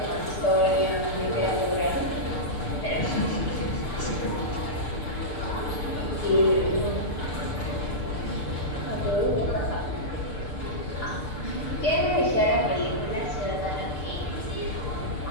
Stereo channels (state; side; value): late; right; 6.7 ms